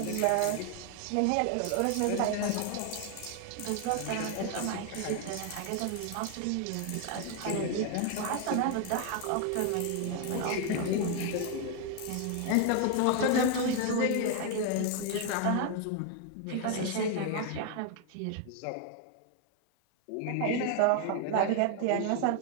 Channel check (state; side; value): different; both; correlation 0.01